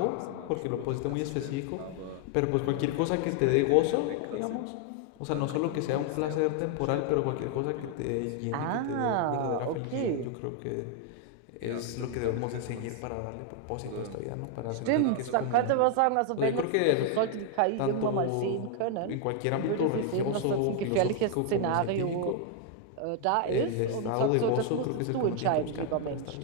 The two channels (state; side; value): different; both; correlation 0.00